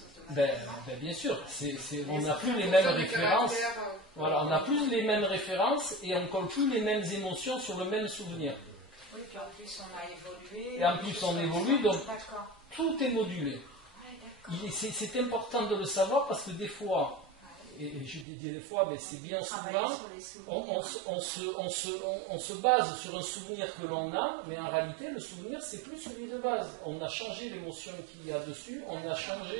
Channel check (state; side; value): drops out; left; at 18.2 s